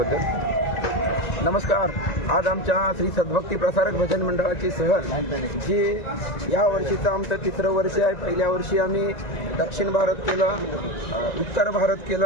नमस्कार. आज आमच्या श्री सद्भक्ती प्रसारक भजन मंडळाची सहल जी या वर्षीचं आमचं 3रं वर्ष आहे. पहिल्या वर्षी आम्ही दक्षिण भारत केलं, उत्तर भारत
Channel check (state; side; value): late; right; 1.9 ms